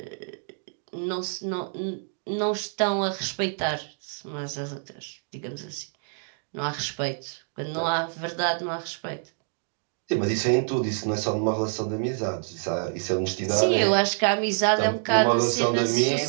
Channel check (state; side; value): silent; left; 60 dB below the other